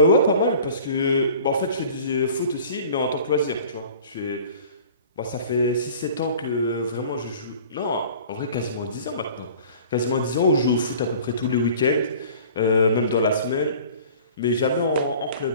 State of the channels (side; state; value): both; inverted; correlation -0.46